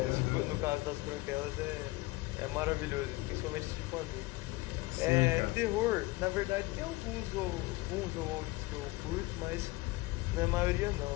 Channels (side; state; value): right; quieter; 20.7 dB